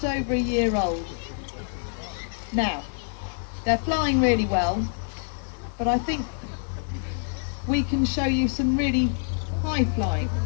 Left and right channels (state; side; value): silent; right; digital silence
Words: over a year old. Now, they're flying really well, but I think we can show you some really high flying.